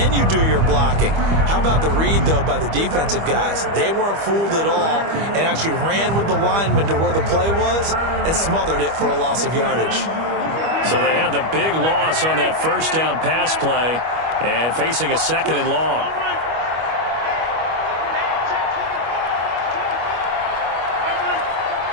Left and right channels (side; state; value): left; late; 25 ms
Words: you do your blocking. How about the read, though, by the defensive guys? They weren't fooled at all and actually ran with the lineman to where the play was and smothered it for a loss of yardage. So they had the big loss on that first down pass play and facing a 2nd and long.